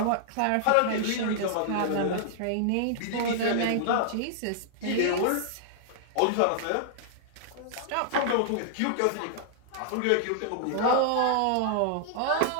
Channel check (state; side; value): different; both; correlation -0.01